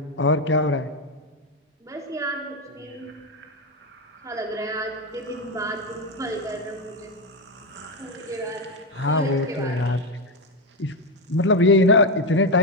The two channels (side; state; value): both; normal; correlation 0.09